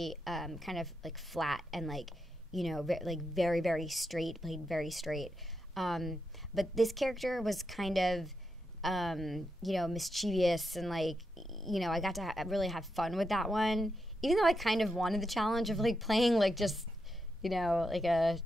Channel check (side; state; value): both; normal; correlation 0.85